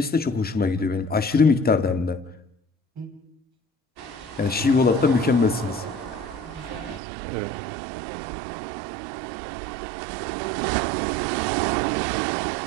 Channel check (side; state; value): left; drops out; at 7.0 s